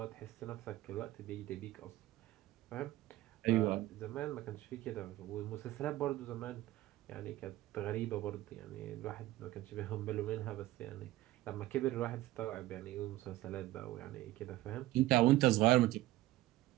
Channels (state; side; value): quieter; left; 16.6 dB